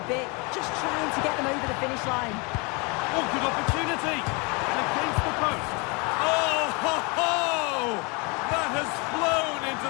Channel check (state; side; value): quieter; right; 29.7 dB